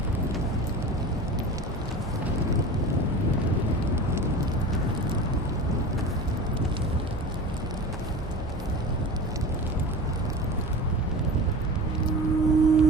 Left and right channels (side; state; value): both; normal; correlation 0.33